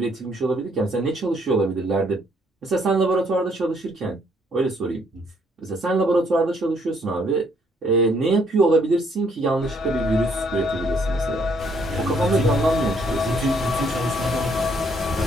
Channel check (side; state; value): both; normal; correlation 0.68